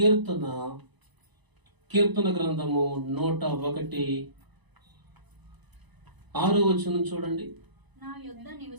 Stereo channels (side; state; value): left; late; 1.0 ms